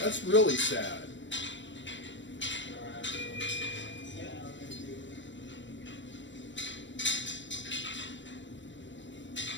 That's really sad.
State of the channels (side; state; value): right; late; 0.54 ms